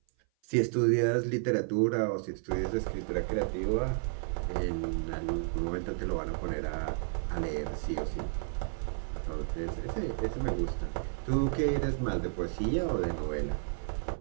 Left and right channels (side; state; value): left; silent; 56 dB below the other